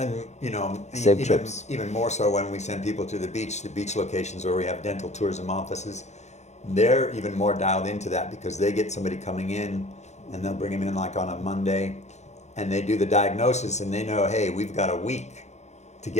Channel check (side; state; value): right; late; 0.33 ms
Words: Save even trips. even more so when we send people to the beach locations where we have dental tourism offices, they're even more dialed into that, because they get somebody coming in, and they'll bring them in like on a Monday, and they do the diagnosis, and they know, hey, we've got a week to